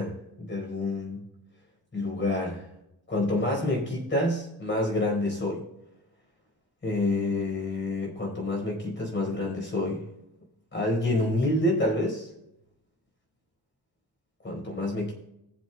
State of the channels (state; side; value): normal; both; correlation 0.42